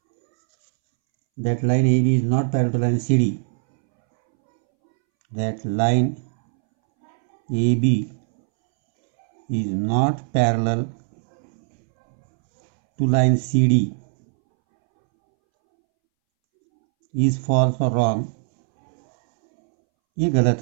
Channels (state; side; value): silent; left; 65 dB below the other